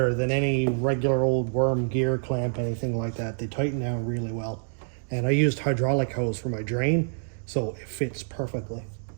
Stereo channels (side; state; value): left; silent; digital silence